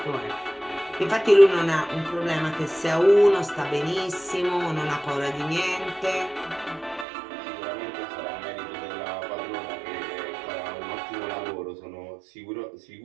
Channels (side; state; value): left; drops out; at 7.1 s